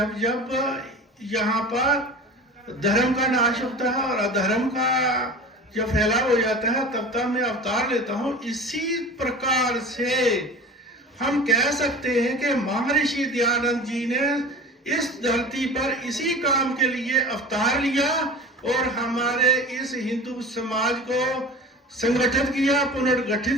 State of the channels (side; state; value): both; normal; correlation 0.36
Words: जब यहाँ पर धर्म का नाश होता है और अधर्म का जब फैलाव हो जाता है, तब तब मैं अवतार लेता हूं। इसी प्रकार से हम कह सकते हैं कि महर्षि दयानंद जी ने इस धरती पर इसी काम के लिए अवतार लिया और हमारे इस हिंदू समाज को संगठित किया,